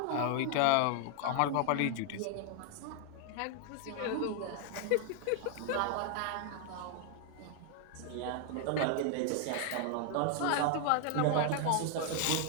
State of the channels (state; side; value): different; both; correlation 0.00